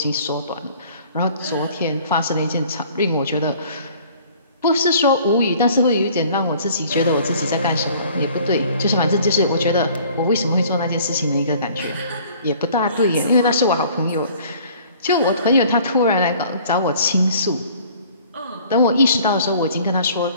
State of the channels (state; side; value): inverted; both; correlation -0.52